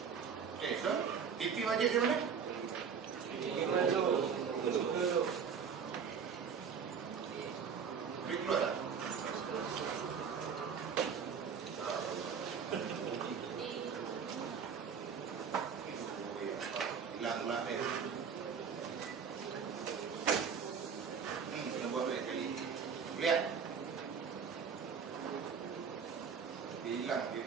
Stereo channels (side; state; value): left; quieter; 6.6 dB